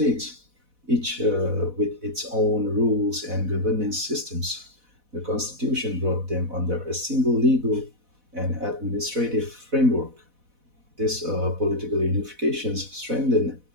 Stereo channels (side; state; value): left; late; 4.1 ms